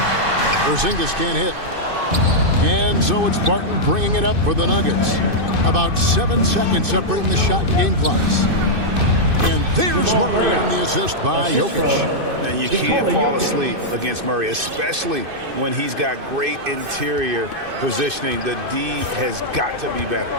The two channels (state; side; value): late; left; 2.6 ms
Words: Porzingis can't hit. And so it's Barton bringing it up for the Nuggets. About 7 seconds separating the shot and game clocks. And there's Murray on the assist by Jokic. And you can't fall asleep against Murray, especially when he's got great interior positioning. The D has got to be better.